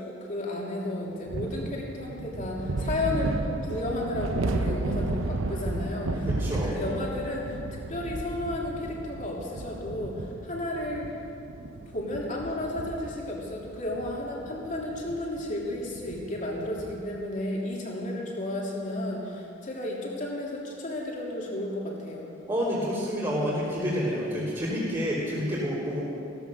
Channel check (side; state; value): both; normal; correlation 0.49